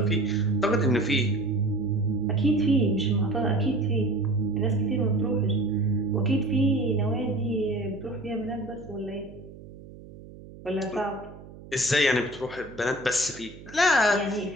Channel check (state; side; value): noise; right; hum, 18 dB below the sound